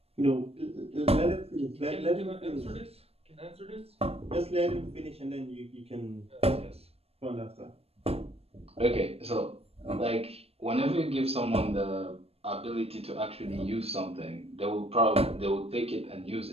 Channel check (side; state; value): left; late; 0.29 ms